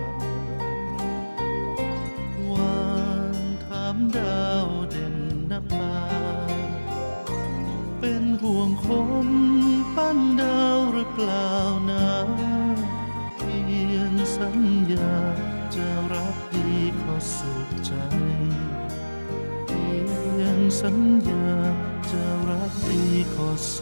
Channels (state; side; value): inverted; both; correlation -1.00